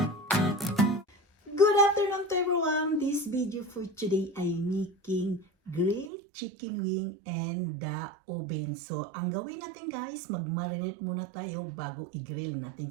Good afternoon to everyone. This video for today ay making grilled chicken wing and the oven. So, ang gawin natin guys, mag-marinate muna tayo bago i-grill natin.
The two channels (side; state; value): left; drops out; at 6.1 s